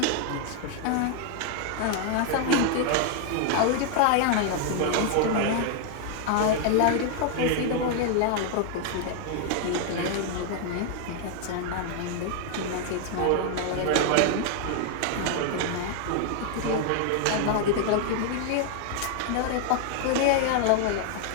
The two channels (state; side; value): different; both; correlation 0.00